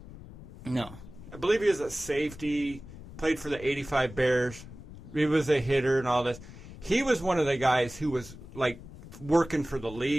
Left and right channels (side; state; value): left; noise; rumble, 16 dB below the sound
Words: No. I believe he was a safety, played for the 85 Bears. He was a hitter and all this. He was one of the guys who was, like, working for the